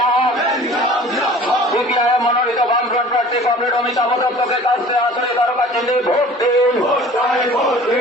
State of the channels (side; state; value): both; normal; correlation 0.46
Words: সিপিআইএম মনোনীত বামফ্রন্ট প্রার্থী কমরেড অমিতাভ দত্তকে কাছে আসলে তার কাছে ভোট দিন।